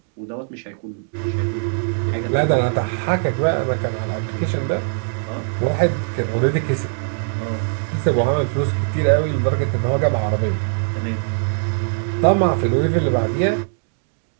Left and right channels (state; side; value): silent; left; digital silence